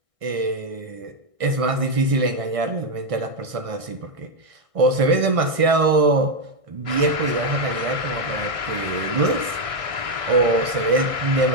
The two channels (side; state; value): left; late; 1.6 ms